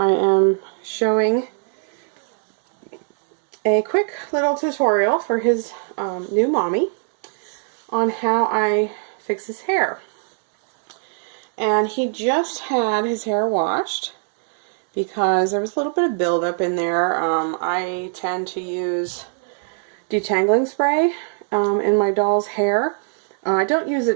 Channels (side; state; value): left; silent; digital silence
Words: am showing a quick little tutorial for his new mommy on how I fix his hair. And he just had his hair washed because there was a little bit of buildup in there. I tend to use detangling spray in my doll's hair. I don't use